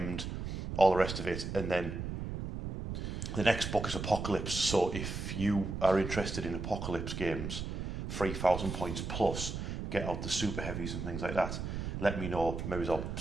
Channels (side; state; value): right; noise; rumble, 5 dB below the sound